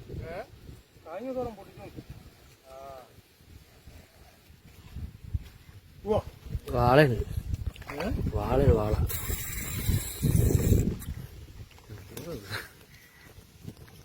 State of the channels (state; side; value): identical; both; correlation 1.00